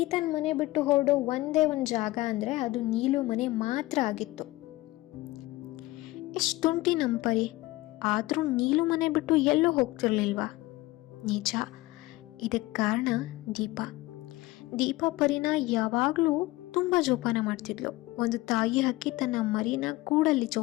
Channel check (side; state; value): right; quieter; 19.3 dB